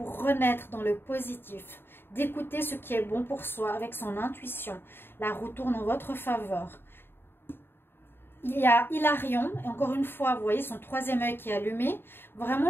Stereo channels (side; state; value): right; late; 0.11 ms